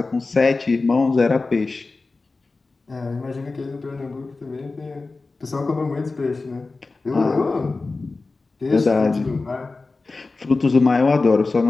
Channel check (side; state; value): right; quieter; 3.7 dB